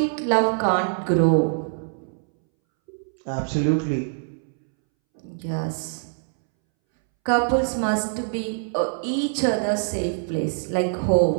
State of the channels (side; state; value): left; silent; 63 dB below the other